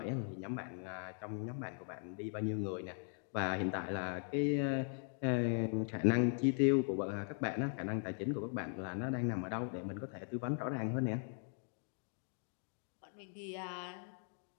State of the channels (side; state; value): right; silent; 51 dB below the other